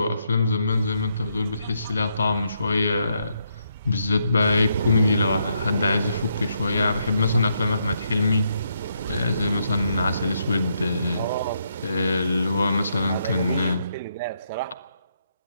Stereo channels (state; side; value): inverted; both; correlation -0.77